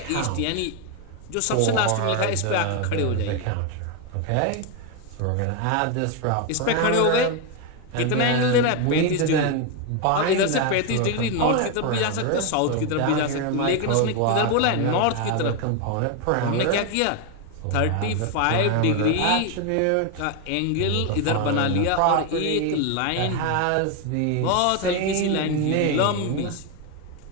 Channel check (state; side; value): different; both; correlation 0.01